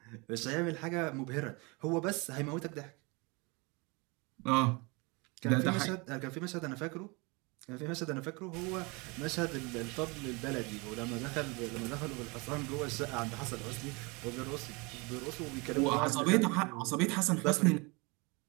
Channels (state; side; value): quieter; left; 28.0 dB